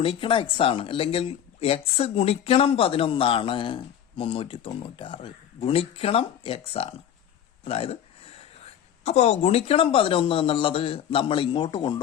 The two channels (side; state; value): right; quieter; 9.7 dB